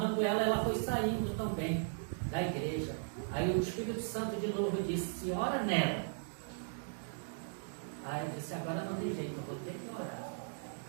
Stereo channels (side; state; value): left; silent; digital silence